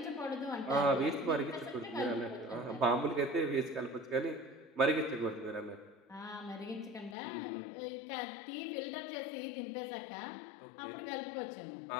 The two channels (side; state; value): right; drops out; at 7.2 s